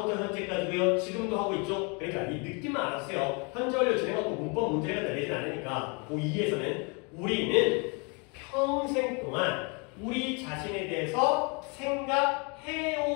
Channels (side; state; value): right; quieter; 32.8 dB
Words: 현재까지고요. 지금도 하고 있죠? 그러니까 이 느낌만 알았어요. 현재 완료 진행하고 문법 문제가 내리진 않으니까 고2에서는 우리는 평생 동안 우리 자신에 대해서